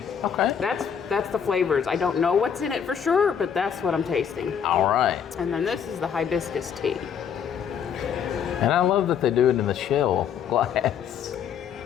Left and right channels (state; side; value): quieter; right; 7.8 dB